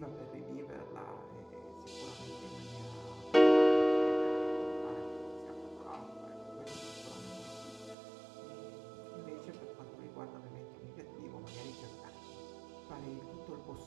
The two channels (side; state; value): left; drops out; at 8.0 s